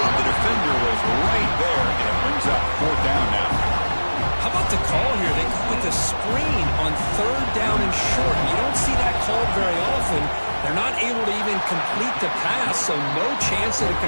The defender was right there, and it brings up fourth down now. How about the call here? They go with a screen on third down and short. You don't see that called very often. They're not able to even complete the pass, so no chance at a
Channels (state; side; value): inverted; both; correlation -1.00